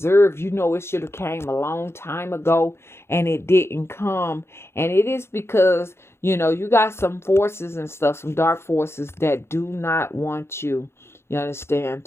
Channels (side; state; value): right; late; 0.12 ms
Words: It should have came a long time ago and it didn't come. And it is because, you got some forces and stuff, some dark forces that do not want you understand,